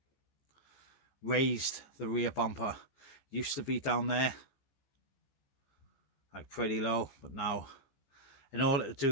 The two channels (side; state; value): right; late; 15 ms